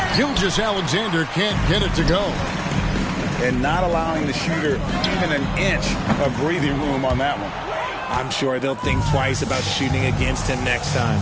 Gilgeous-Alexander can't get it to go. And not allowing the shooter even an inch of breathing room on that one. I'm sure they'll think twice about shooting against him next time.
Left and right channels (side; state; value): both; identical; correlation 1.00